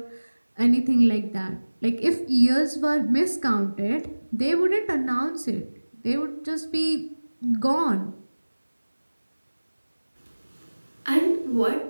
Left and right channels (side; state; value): both; inverted; correlation -1.00